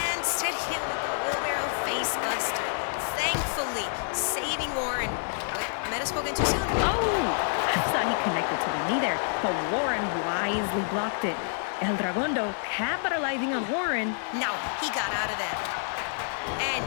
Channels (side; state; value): right; silent; 59 dB below the other